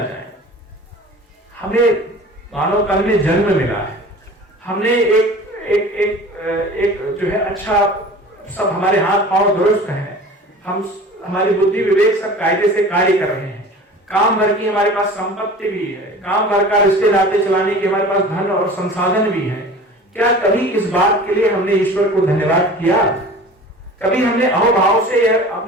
हमें मानव तन में जन्म मिला है, हमने एक जो है अच्छा, सब हमारे हाथ पांव दुरुस्त हैं, हमारी बुद्धि विवेक सब कायदे से कार्य कर रहे हैं, काम भर की हमारे पास संपत्ति भी है, काम भर का रिश्ते नाते चलाने की हमारे पास धन और संसाधन भी है। क्या कभी इस बात के लिए हमने ईश्वर को धन्यवाद किया? कभी हमने अहोभाव से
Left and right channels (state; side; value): normal; both; correlation 0.41